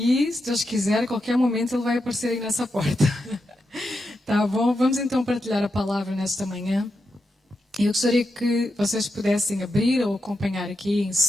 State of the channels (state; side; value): normal; both; correlation 0.87